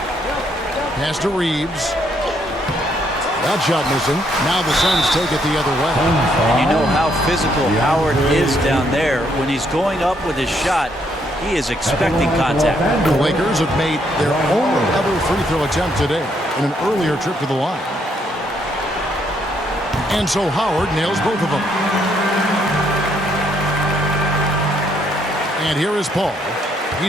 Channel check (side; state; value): both; normal; correlation 0.72